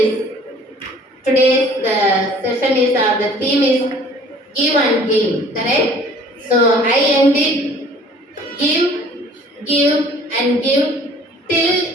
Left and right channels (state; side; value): normal; both; correlation 0.53